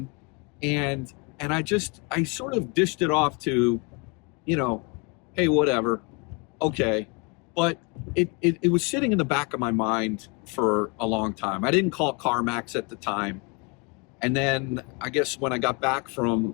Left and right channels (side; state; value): right; quieter; 31.5 dB